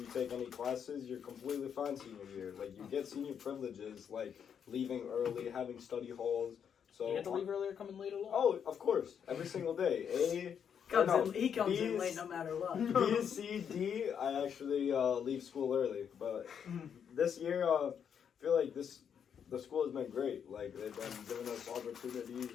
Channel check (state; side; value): quieter; right; 7.8 dB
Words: retake any classes, you're completely fine senior year. Like, you get senior privileges, like leaving early, having study halls. So, You have to leave earlier, come in late along. Oh, of course, every single day. he comes in B's- late no matter what. B, C, D, I actually leave school early. But this year, I feel like the school has been great. Like, they've been giving us